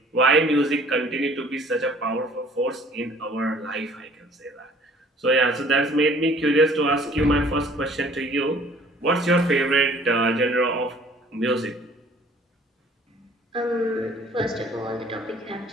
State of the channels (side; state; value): both; normal; correlation 0.54